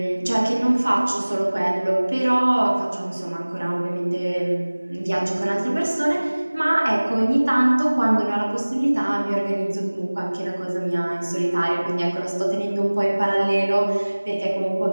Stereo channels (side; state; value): both; inverted; correlation -1.00